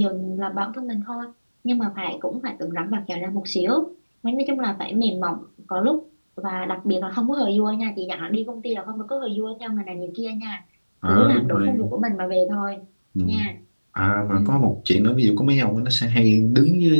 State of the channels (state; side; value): inverted; both; correlation -1.00